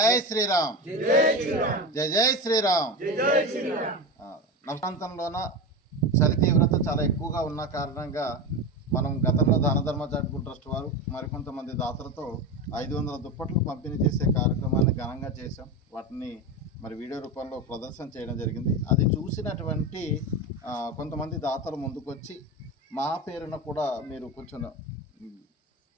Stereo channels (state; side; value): normal; both; correlation 0.20